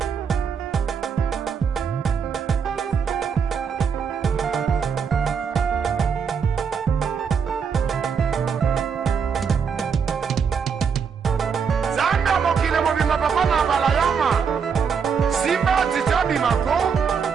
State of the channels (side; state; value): left; quieter; 6.4 dB